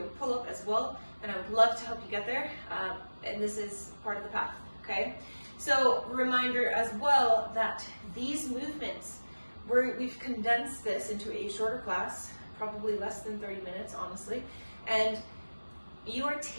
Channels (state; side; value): inverted; both; correlation -1.00